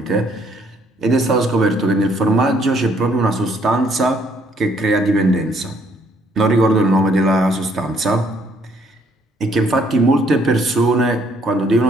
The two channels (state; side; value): normal; both; correlation 0.66